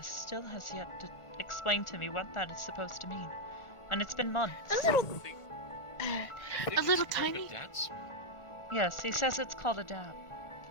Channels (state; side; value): late; right; 1.4 ms